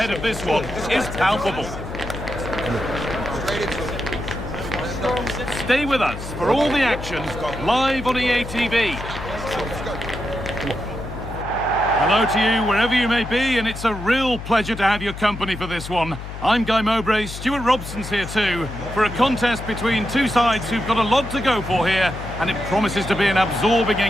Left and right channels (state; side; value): noise; left; hum, 10 dB below the sound